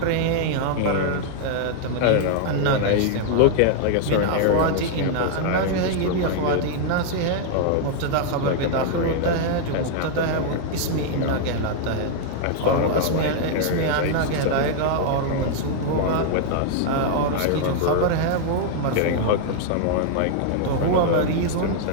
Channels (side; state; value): both; different; correlation 0.00